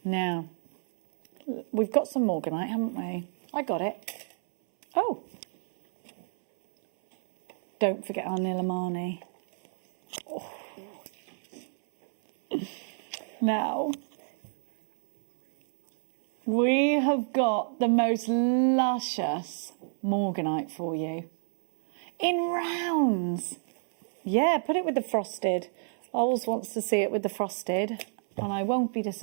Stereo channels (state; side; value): silent; left; 59 dB below the other